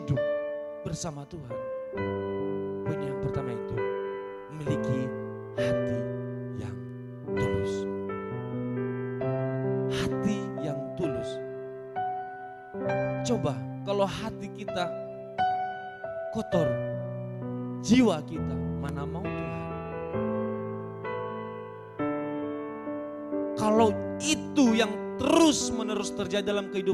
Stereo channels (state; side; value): identical; both; correlation 1.00